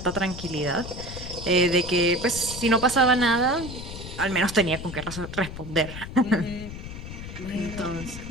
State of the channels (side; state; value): left; noise; rumble, 10 dB below the sound